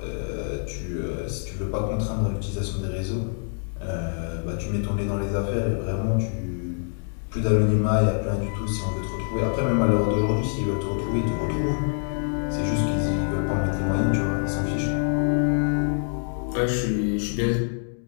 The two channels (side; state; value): right; silent; 61 dB below the other